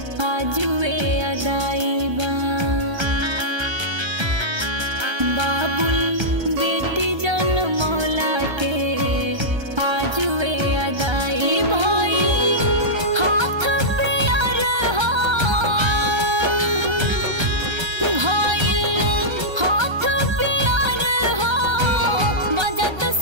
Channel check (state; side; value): late; left; 1.3 ms